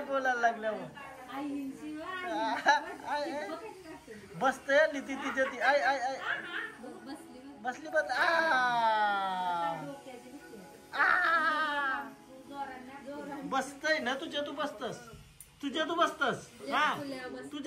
बोलायला लागल्यावर बसते आली ती तिच्या ती आय आय आय बसली बस बसतय ना तुझ्या तू बसतस हा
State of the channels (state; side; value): identical; both; correlation 1.00